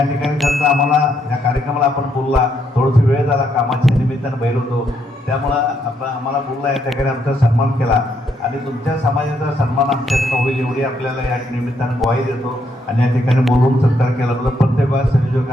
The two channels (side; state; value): both; normal; correlation 0.75